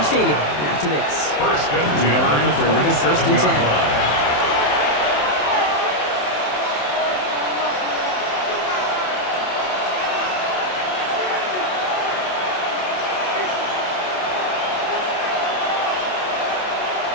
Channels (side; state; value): right; late; 27 ms